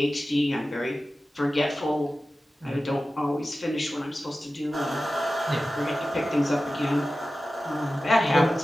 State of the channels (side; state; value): both; normal; correlation 0.95